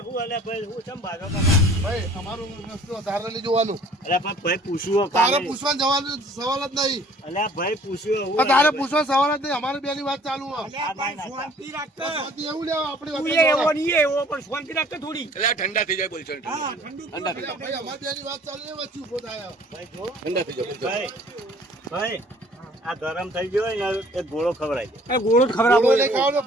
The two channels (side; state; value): both; normal; correlation 0.53